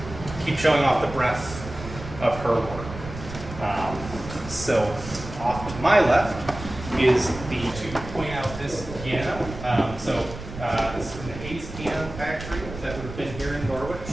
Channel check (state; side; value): noise; right; rumble, 11 dB below the sound